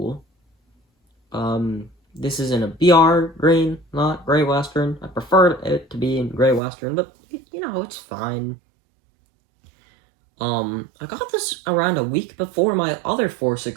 This is in a BR green, not Grey Western. I prefer it to be in Grey Western, but, you know, it's fine. I got this around a week before my other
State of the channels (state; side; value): drops out; left; at 6.6 s